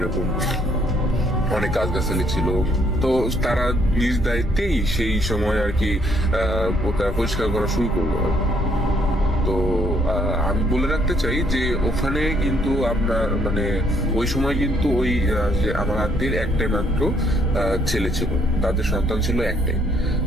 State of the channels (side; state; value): both; normal; correlation 0.68